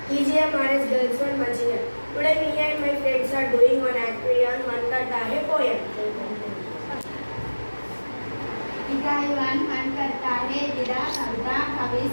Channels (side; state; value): both; inverted; correlation -1.00